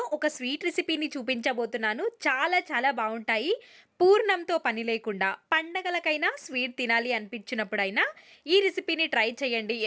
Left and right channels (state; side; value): identical; both; correlation 1.00